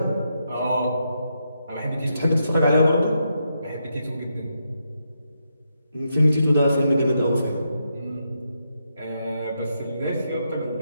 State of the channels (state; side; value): inverted; both; correlation -0.82